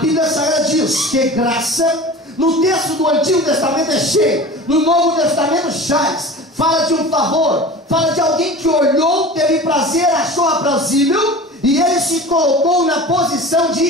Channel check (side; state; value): both; normal; correlation 0.36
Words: Sagrada diz que graça, no texto do Antigo Testamento é cheio, no Novo Testamento chaz, fala de um favor, fala de alguém que olhou, teve prazer, achou aprazível, e ele se colocou na posição